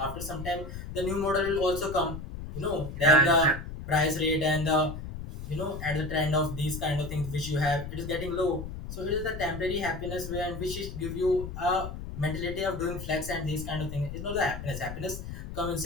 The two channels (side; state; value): left; noise; rumble, 9 dB below the sound